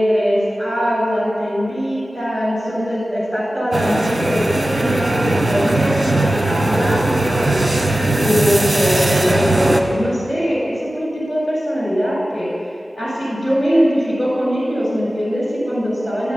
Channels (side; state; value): both; normal; correlation 0.95